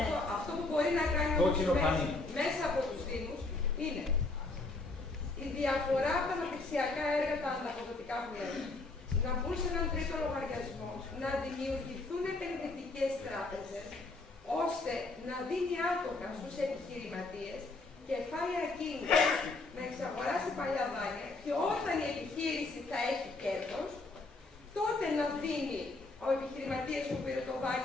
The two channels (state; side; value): quieter; right; 3.3 dB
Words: αυτό που μπορεί να κάνει μέσα από τους Δήμους είναι η διαφορά από τα αναπτυξιακά έργα, τα ανταποδοτικά που λέμε, να μπουν σε έναν τρίτο λογαριασμό, να δημιουργηθούν επενδυτικές τράπεζες, ώστε να δίνει άτομα στους επιχειρηματίες κεφάλαια κίνητρα να εξαγοράσει παλιά δάνεια και όταν η επιχείρηση θα έχει κέρδος, τότε να δίνει ο επιχειρηματίας που πήρε το